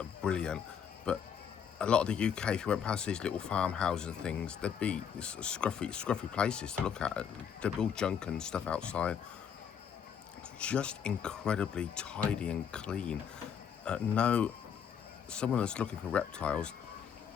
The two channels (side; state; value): right; quieter; 7.8 dB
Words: brilliant, but a lot of the UK, if you went past these little farmhouses and things, there'd be scruffy places to look at. There'd be all junk and stuff outside. Just incredibly tidy and clean. Someone that's looking for reptiles,